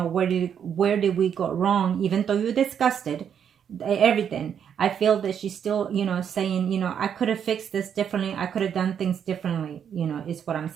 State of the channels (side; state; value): left; quieter; 8.2 dB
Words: where did we go wrong? Even though you discussed it, everything, I feel that she's still, you know, saying, you know, I could have fixed this differently, I could have done things differently, you know, is what I'm